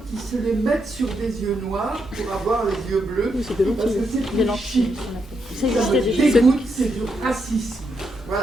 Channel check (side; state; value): both; normal; correlation 0.81